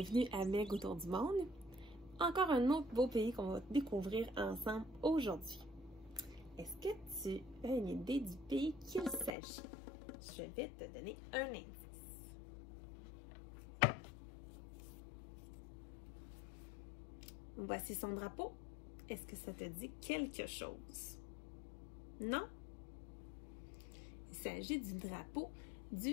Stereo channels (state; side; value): drops out; right; at 9.3 s